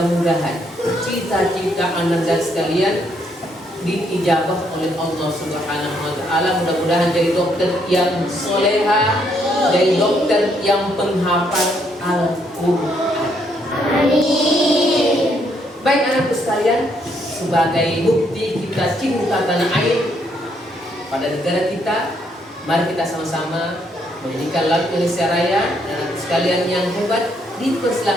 cita-cita Anda sekalian diijabah oleh Allah Subhanahu wa Ta'ala. Mudah-mudahan jadi dokter yang soleha, jadi dokter yang penghafal Al-Quran. Amin. Baik anakku sekalian, sebagai bukti kita cinta tanah air pada negara kita, mari kita sama-sama menyanyikan lagu Indonesia Raya. Anak sekalian yang hebat,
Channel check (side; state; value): both; normal; correlation 0.72